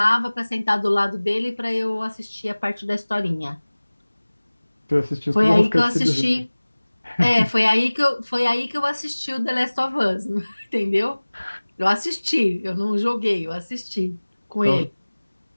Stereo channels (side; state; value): both; inverted; correlation -1.00